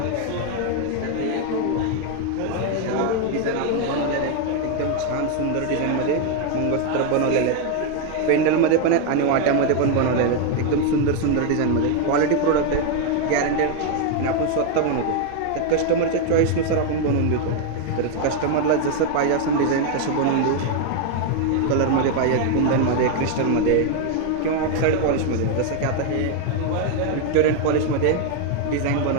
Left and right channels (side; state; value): both; different; correlation 0.01